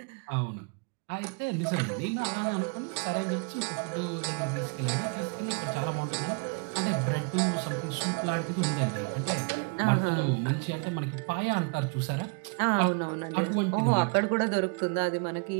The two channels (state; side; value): quieter; left; 33.3 dB